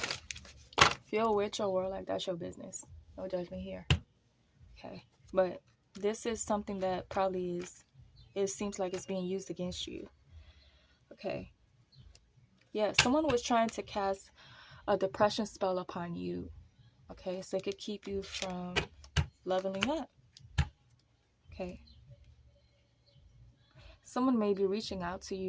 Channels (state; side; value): identical; both; correlation 1.00